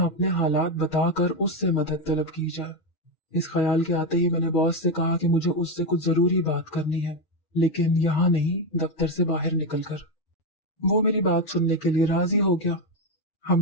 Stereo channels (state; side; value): late; right; 6.2 ms